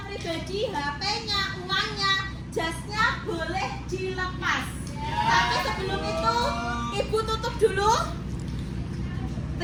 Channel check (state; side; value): identical; both; correlation 1.00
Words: pribadi, HP-nya, uangnya, jasnya boleh dilepas. Tapi sebelum itu Ibu tutup dulu.